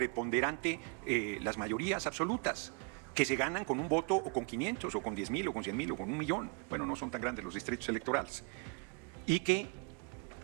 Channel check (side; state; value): left; quieter; 35.7 dB